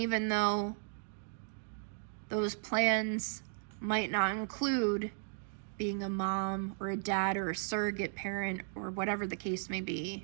though those plans might not include being a mom or a dad or a surrogate parent or whatever the case may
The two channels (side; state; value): left; silent; digital silence